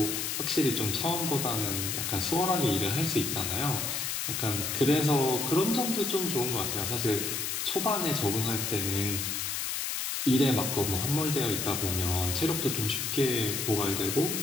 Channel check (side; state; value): left; noise; hiss, 2 dB below the sound